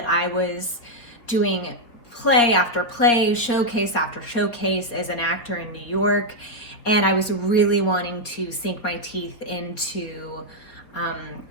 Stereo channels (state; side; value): late; right; 4.3 ms